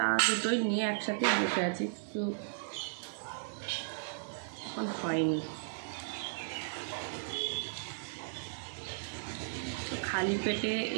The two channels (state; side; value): silent; left; digital silence